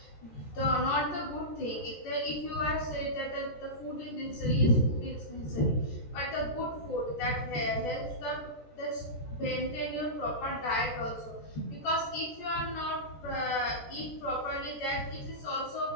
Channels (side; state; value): right; late; 14 ms